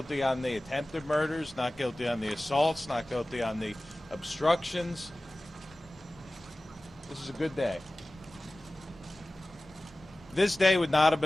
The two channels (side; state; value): both; normal; correlation 0.97